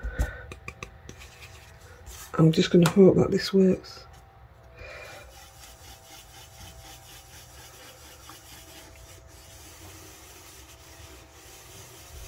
just going to hope that this works.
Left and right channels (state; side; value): identical; both; correlation 1.00